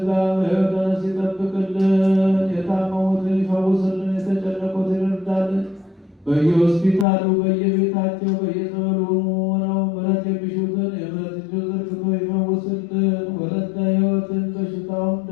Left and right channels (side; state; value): right; drops out; at 7.1 s